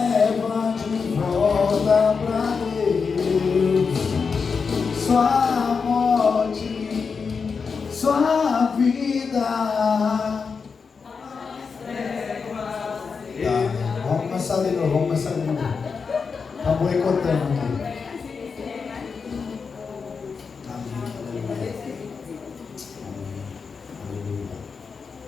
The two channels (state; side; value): quieter; right; 5.3 dB